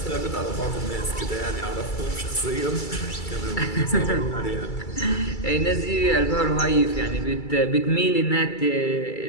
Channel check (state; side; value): late; right; 2.3 ms